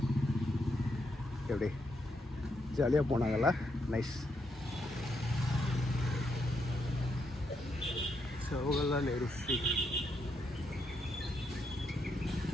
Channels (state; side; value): normal; both; correlation 0.79